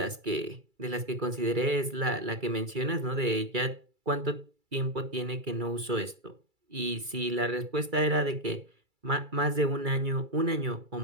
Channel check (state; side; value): late; left; 2.3 ms